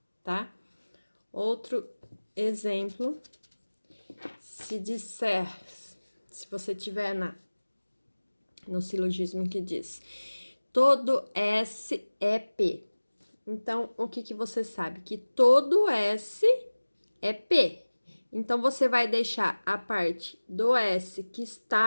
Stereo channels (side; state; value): both; inverted; correlation -1.00